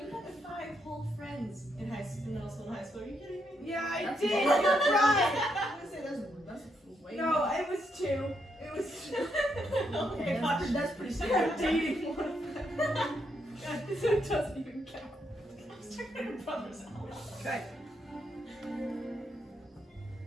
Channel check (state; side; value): normal; both; correlation 0.78